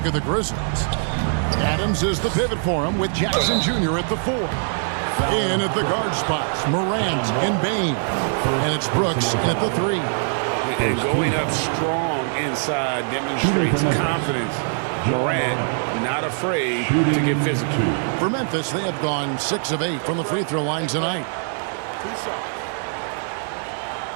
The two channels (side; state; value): left; silent; 64 dB below the other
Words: at the Grizzlies. Adams is the pivot for him with Jackson Jr. at the 4. In at the guard spots, Morant and Bain. And it's Brooks at the 3. And going up strong inside demonstrates confidence. Morant not afraid to get physical. For Memphis, they have gone 6 of 8 from the free throw line tonight.